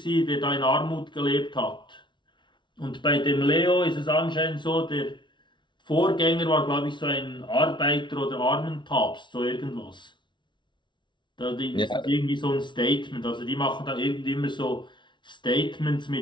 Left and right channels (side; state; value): right; late; 0.23 ms